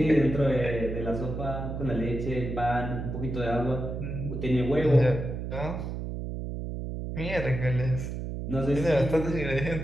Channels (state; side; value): noise; right; hum, 5 dB below the sound